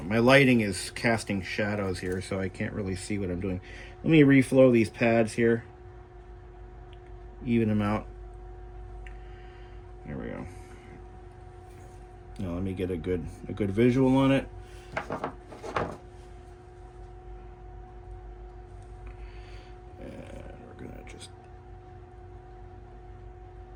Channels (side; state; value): both; identical; correlation 1.00